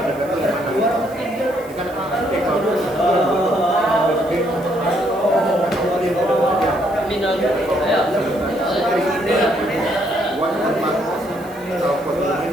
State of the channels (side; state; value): right; noise; hiss, 24 dB below the sound